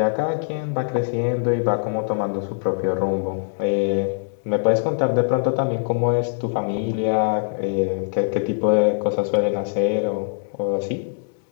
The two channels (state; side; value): silent; right; digital silence